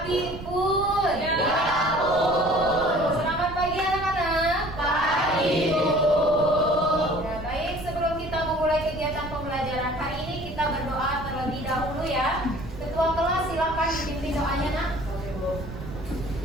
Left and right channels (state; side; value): noise; right; rumble, 11 dB below the sound